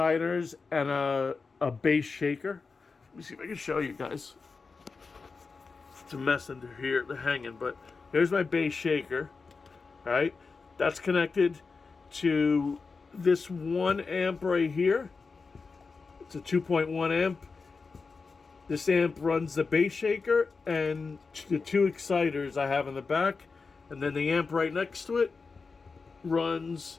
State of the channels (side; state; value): right; quieter; 4.5 dB